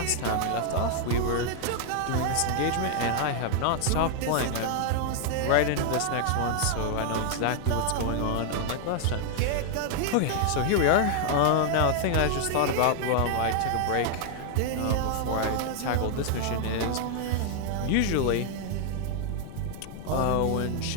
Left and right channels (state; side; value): different; both; correlation 0.00